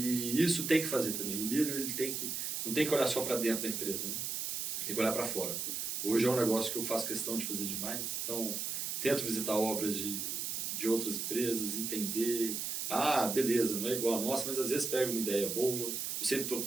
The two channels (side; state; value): right; noise; hiss, 2 dB below the sound